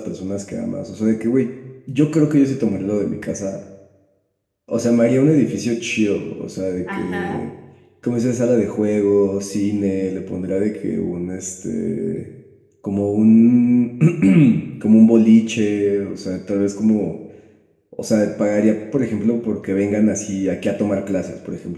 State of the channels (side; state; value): both; identical; correlation 1.00